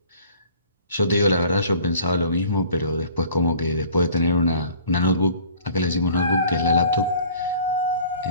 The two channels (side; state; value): both; inverted; correlation -0.50